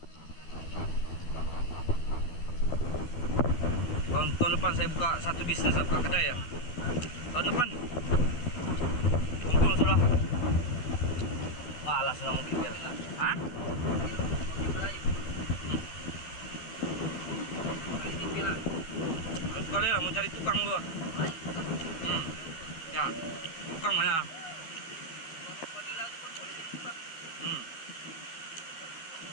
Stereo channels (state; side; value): late; right; 12 ms